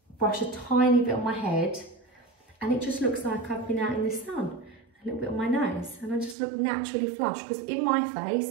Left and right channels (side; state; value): left; drops out; at 6.4 s